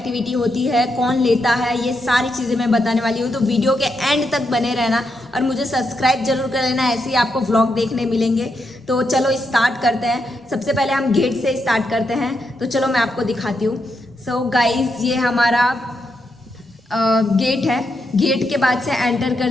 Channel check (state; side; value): normal; both; correlation 0.82